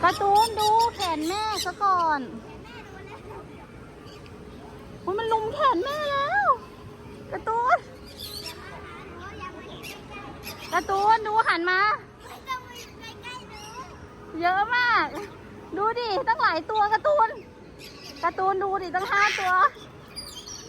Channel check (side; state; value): both; identical; correlation 1.00